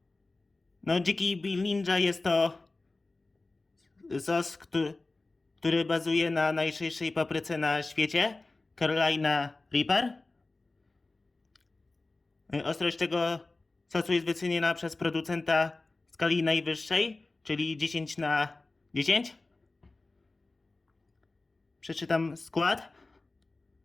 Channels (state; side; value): quieter; right; 3.3 dB